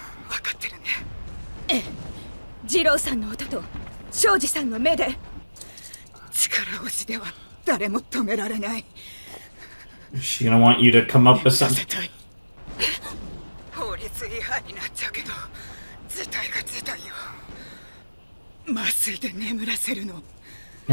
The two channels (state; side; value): inverted; both; correlation -1.00